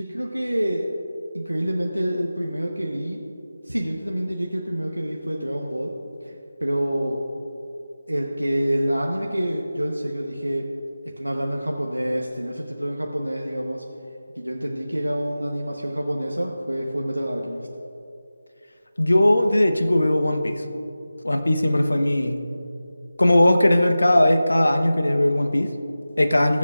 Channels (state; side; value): inverted; both; correlation -0.96